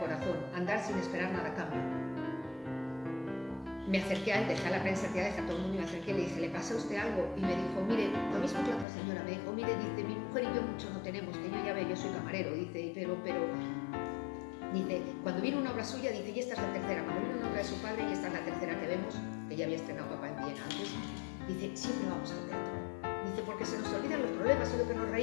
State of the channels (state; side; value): drops out; right; at 8.8 s